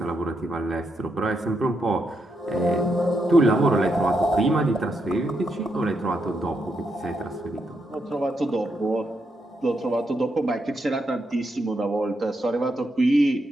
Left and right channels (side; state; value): both; normal; correlation 0.81